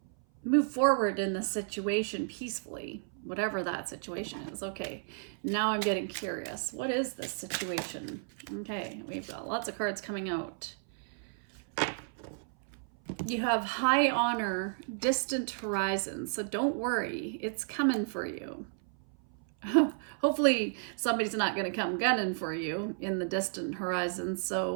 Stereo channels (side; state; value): left; silent; 56 dB below the other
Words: move forward in the situation peacefully, whatever that situation is. Okay, now I'm getting curious. What is this situation? Okay, we've got lots of cards coming out. You have high honor, distant horizons. So don't worry, it's coming for you. Hopefully somebody's not going to come gunning for you in the distant horizon.